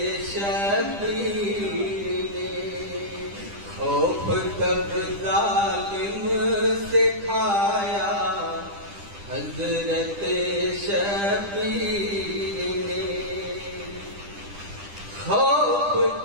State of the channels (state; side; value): late; left; 10 ms